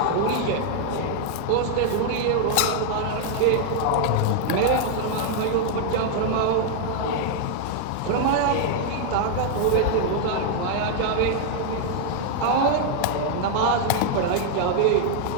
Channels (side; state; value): both; different; correlation 0.00